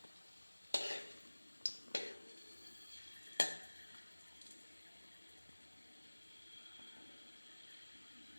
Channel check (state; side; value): inverted; both; correlation -1.00